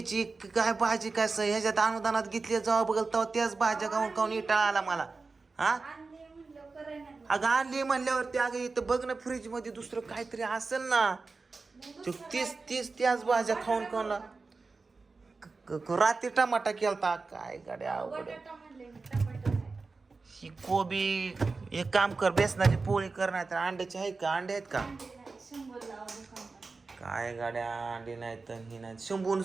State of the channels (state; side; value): quieter; left; 4.0 dB